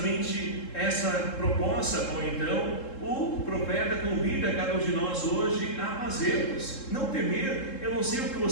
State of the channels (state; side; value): late; right; 3.7 ms